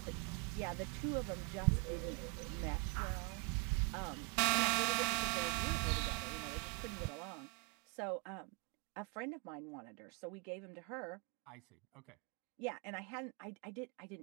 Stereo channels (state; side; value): quieter; left; 34.2 dB